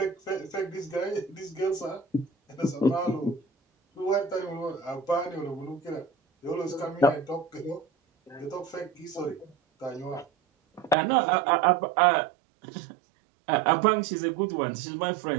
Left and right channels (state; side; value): drops out; left; at 11.0 s